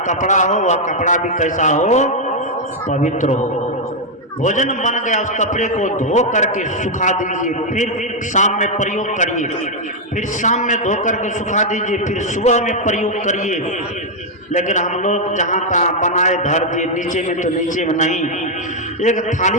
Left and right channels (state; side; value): normal; both; correlation -0.01